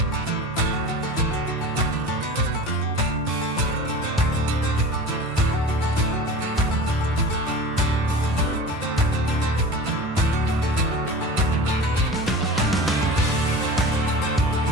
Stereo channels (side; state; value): both; normal; correlation 0.35